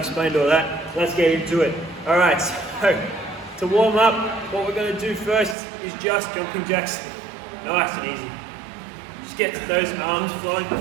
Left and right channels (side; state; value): left; drops out; at 5.6 s